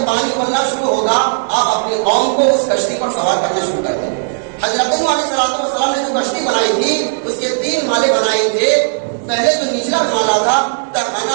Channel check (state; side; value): silent; left; digital silence